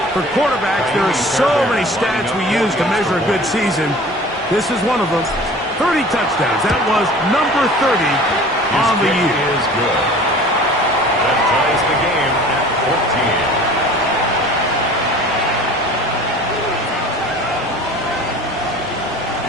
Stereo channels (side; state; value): both; normal; correlation 0.44